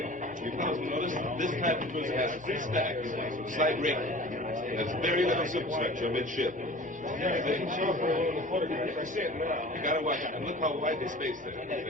You fellas notice this type of cruiser has 3 stacks, slight rig. There's very little superstructure midship. You gotta watch it. And look how wide the space there.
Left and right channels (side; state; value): both; normal; correlation 0.41